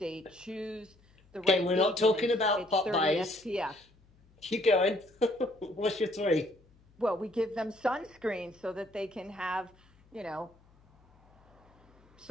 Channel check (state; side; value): noise; left; hum, 30 dB below the sound